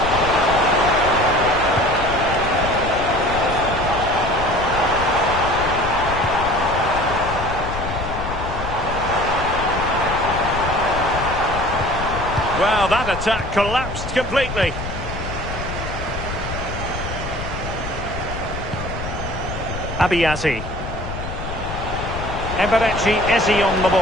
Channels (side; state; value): left; noise; rumble, 7 dB below the sound